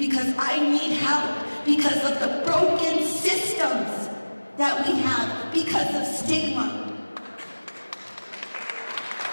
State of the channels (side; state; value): both; inverted; correlation -1.00